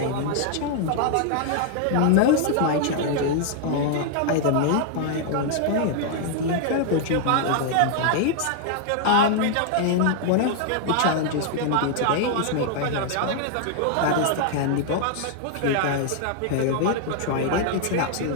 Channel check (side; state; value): both; different; correlation 0.00